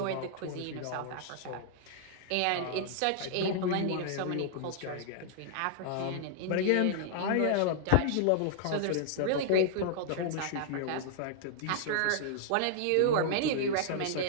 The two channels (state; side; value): different; both; correlation -0.01